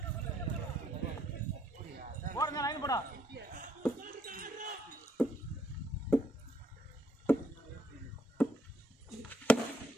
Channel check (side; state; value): both; normal; correlation 0.70